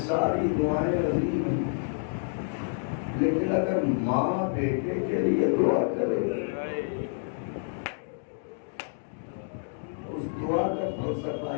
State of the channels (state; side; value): silent; right; digital silence